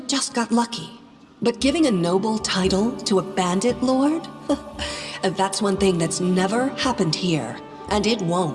just got lucky. But giving a noble title to a bandit lord? That's one thing that's never happened here, and it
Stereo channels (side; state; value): both; identical; correlation 1.00